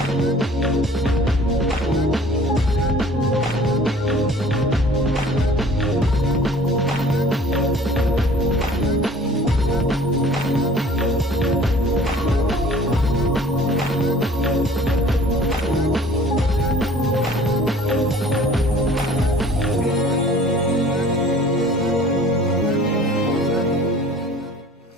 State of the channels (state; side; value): normal; both; correlation 0.49